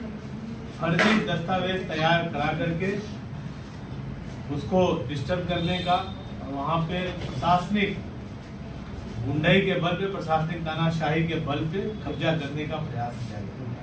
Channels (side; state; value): both; identical; correlation 1.00